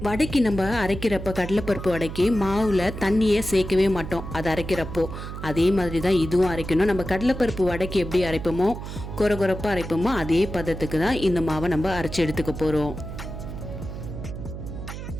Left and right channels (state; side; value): noise; right; hum, 8 dB below the sound